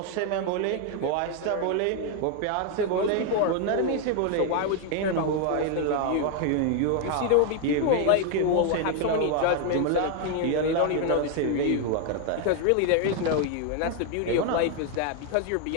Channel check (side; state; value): both; different; correlation 0.01